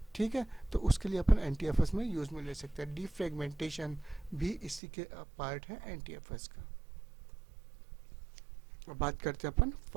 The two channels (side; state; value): left; drops out; at 4.8 s